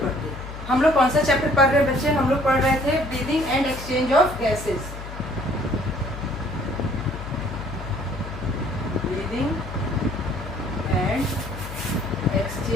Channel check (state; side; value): noise; left; hum, 10 dB below the sound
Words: हम लोग कौन सा चैप्टर पढ़ रहे हैं बच्चे? हम लोग पढ़ रहे थे breathing and exchange of gases. Breathing and